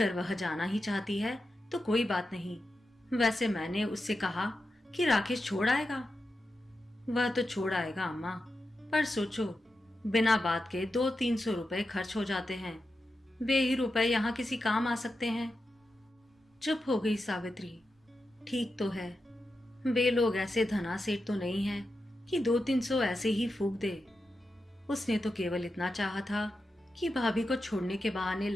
वह जाना ही चाहती है तो कोई बात नहीं। वैसे मैंने उससे कहा कि राकेश छोड़ आएगा। वह तो छोड़ आएगा अम्मा, पर सोचो, बिना बात के 200-300 रुपए खर्च हो जाते हैं। वे ही रुपए यहाँ किसी काम आ सकते हैं। चुप हो गई सावित्री। ठीक तो है, वे लोग ऐसे धनासेठ तो नहीं हैं कि 200-300 ऐसे ही फूंक दे। उसने तो केवल इतना चाहा था कि भाभी को छोड़ने के बहाने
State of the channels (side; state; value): both; normal; correlation 0.90